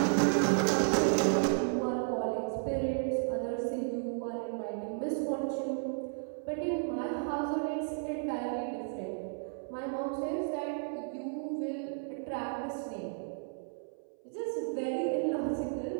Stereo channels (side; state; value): left; silent; 56 dB below the other